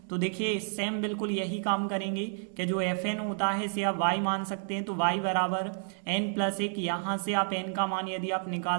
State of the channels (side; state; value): left; silent; 57 dB below the other